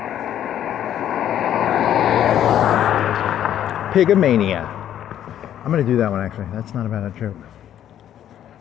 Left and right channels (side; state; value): right; quieter; 10.8 dB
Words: Pigomania. I'm gonna do that one actually. That's not a bad joke.